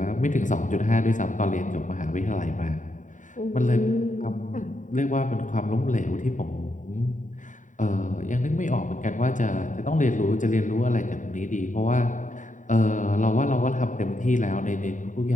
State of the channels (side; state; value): right; late; 0.37 ms